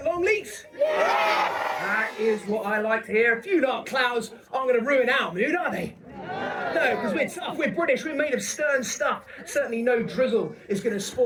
Longleat? Yeah! That is what I like to hear. A few dark clouds aren't going to ruin our mood, are they? No, because we're tough, we're British, we're made of stern stuff. Certainly no drizzle is going to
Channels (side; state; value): both; identical; correlation 1.00